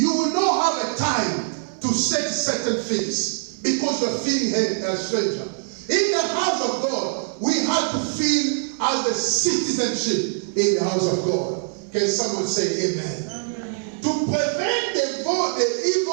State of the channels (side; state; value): left; silent; 63 dB below the other